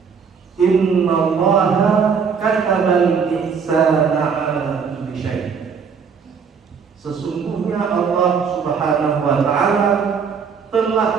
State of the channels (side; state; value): left; quieter; 6.2 dB